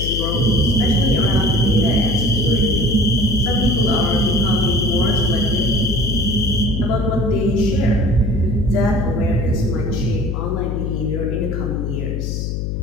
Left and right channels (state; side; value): noise; left; hum, 2 dB below the sound